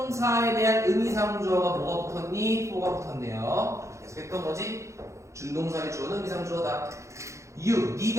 대한 의미상주어가 뭐가 붙었니? for가 붙었네요. 계속했던 거지. 준동사의 주어는 의미상주어다. You,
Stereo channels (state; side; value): late; left; 0.14 ms